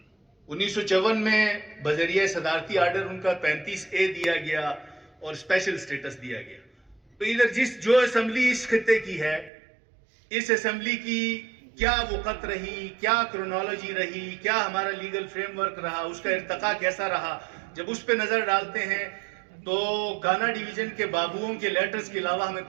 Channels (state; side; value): drops out; left; at 9.5 s